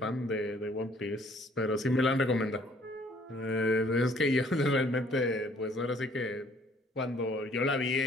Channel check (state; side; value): normal; both; correlation 0.60